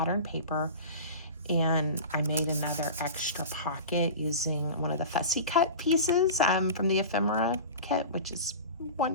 paper, and I made another extra pocket using one of the fussy cut pieces from the ephemera kit, which is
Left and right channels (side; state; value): both; inverted; correlation -0.32